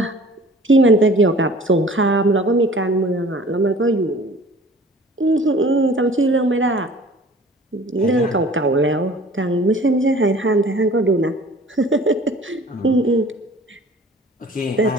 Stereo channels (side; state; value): both; normal; correlation 0.48